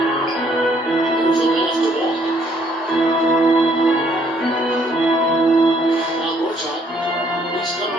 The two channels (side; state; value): both; normal; correlation 0.66